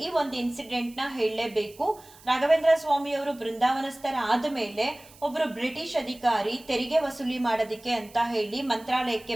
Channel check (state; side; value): noise; right; hiss, 23 dB below the sound